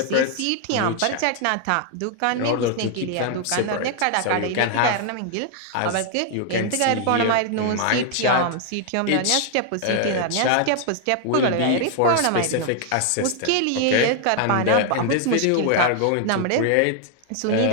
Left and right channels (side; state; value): both; different; correlation 0.00